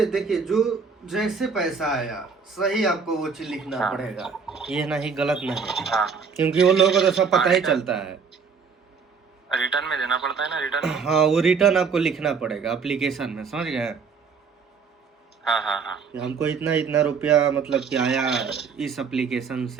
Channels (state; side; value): quieter; left; 5.6 dB